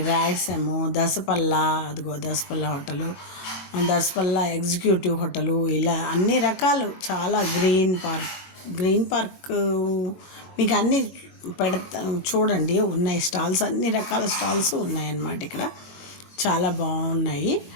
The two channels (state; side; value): late; right; 22 ms